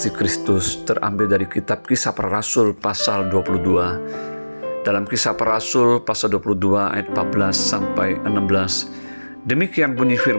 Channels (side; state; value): both; inverted; correlation -1.00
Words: Kristus, terambil dari kitab Kisah Para Rasul pasal 22. Dalam Kisah Para Rasul pasal 22 ayat 14 sampai 16, demikian bunyi